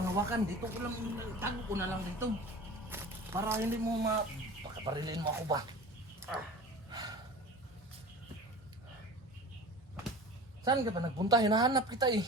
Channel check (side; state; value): both; normal; correlation 0.37